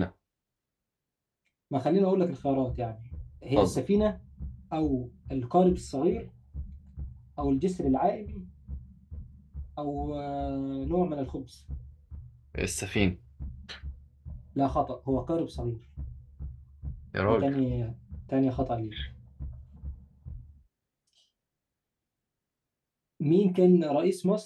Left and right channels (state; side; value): identical; both; correlation 1.00